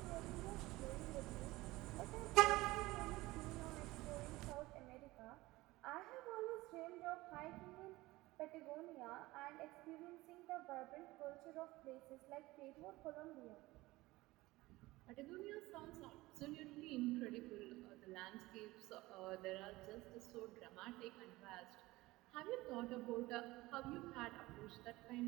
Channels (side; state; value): left; quieter; 19.5 dB